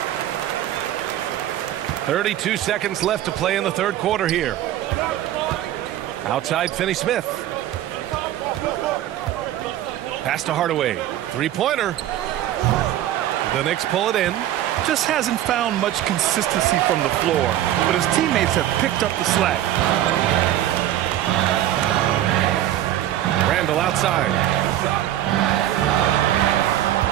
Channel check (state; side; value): quieter; left; 12.7 dB